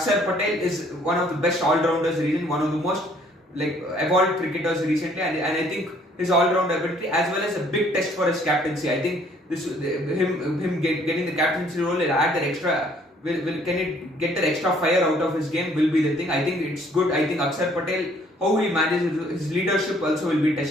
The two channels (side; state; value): both; normal; correlation 0.61